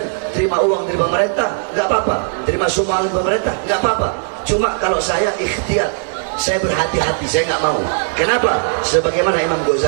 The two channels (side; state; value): left; silent; digital silence